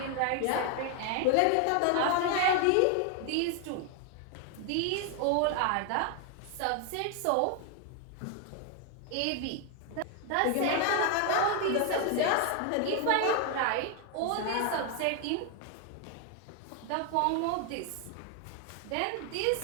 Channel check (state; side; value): different; both; correlation 0.00